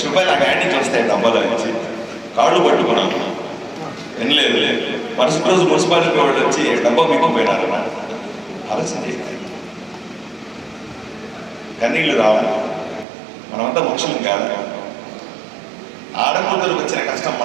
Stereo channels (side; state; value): left; drops out; at 13.1 s